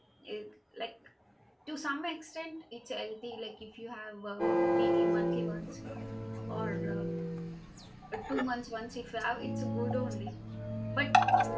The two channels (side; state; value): both; identical; correlation 1.00